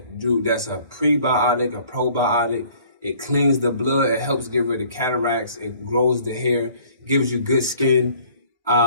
a prebiotic, a probiotic. It cleans the blood. It helps get rid of cataracts. It grows the hair, gives you good skin.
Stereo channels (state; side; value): inverted; both; correlation -0.56